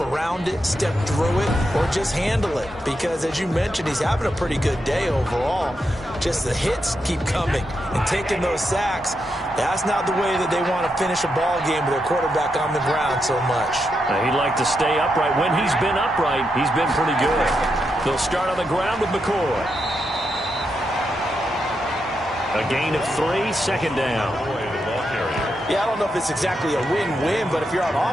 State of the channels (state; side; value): normal; both; correlation 0.84